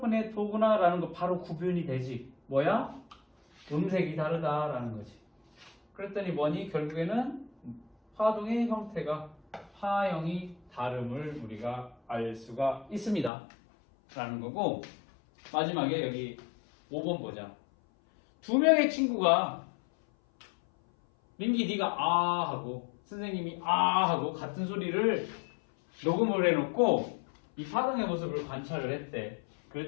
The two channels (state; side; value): drops out; right; at 13.3 s